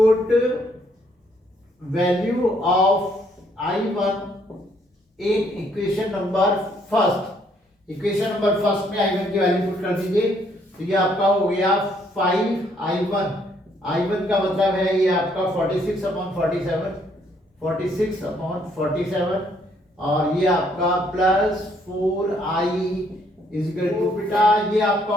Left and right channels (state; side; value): normal; both; correlation 0.68